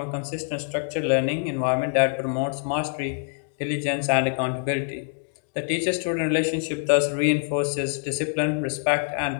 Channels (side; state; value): right; silent; digital silence